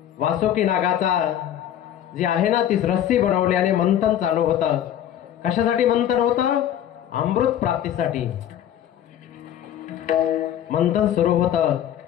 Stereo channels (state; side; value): quieter; right; 10.8 dB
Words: वासुकी नागाचा जी आहे ना ती रस्सी बनवली आणि मंथन चालू होतं. कशासाठी मंथन होतं? अमृत प्राप्तीसाठी मंथन सुरू होतं.